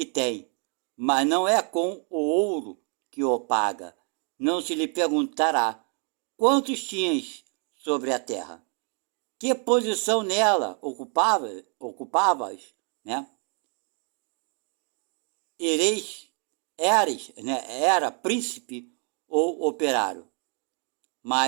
tem, mas não é com o ouro que o paga. Não se lhe perguntará quantos tinhas sobre a terra, que posição nela ocupavas, né? Era príncipe ou operário,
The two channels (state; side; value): quieter; left; 39.8 dB